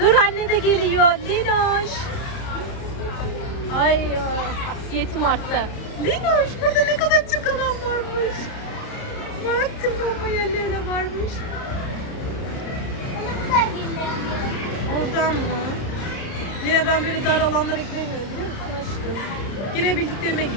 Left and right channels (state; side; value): late; right; 30 ms